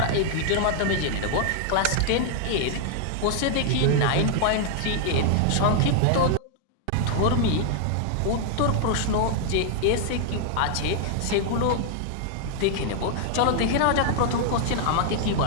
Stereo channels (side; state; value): both; different; correlation 0.00